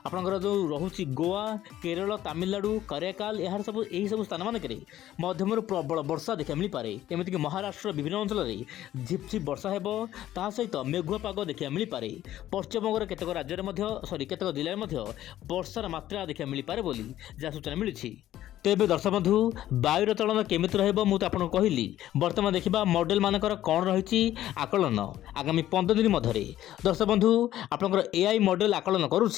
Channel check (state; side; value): quieter; right; 13.1 dB